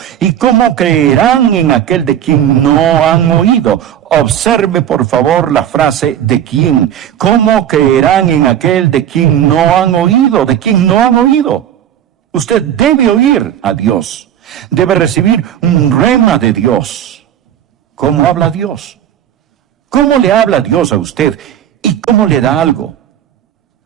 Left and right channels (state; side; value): quieter; left; 10.2 dB